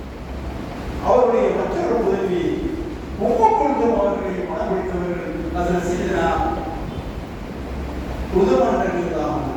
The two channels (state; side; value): identical; both; correlation 1.00